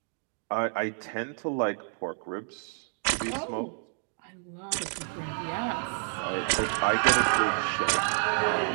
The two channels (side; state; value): left; silent; 56 dB below the other